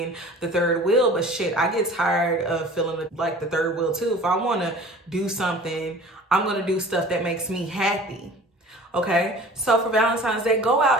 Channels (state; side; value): normal; both; correlation 0.44